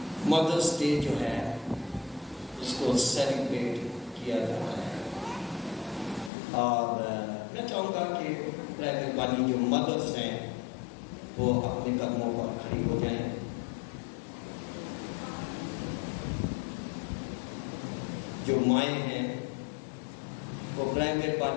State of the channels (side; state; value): right; drops out; at 6.3 s